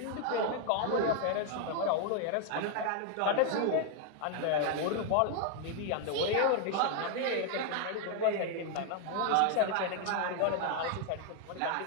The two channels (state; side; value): different; both; correlation 0.00